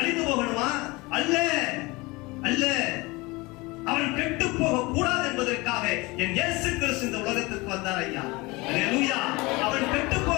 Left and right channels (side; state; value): right; quieter; 23.6 dB